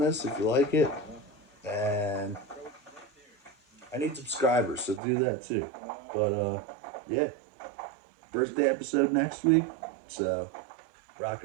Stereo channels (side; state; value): left; drops out; at 5.0 s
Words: if you like it. And I need subscribers, so do that too. But, yeah. Birthday episode next week. So, rock